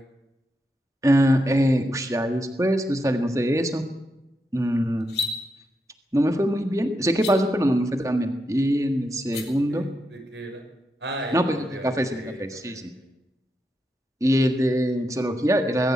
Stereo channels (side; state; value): both; normal; correlation 0.84